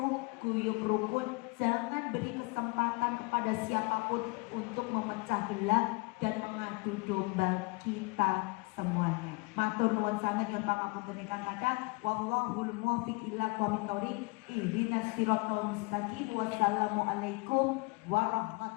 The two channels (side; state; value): right; quieter; 27.6 dB